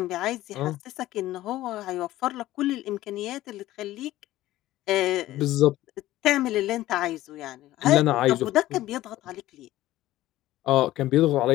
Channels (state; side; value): quieter; right; 15.5 dB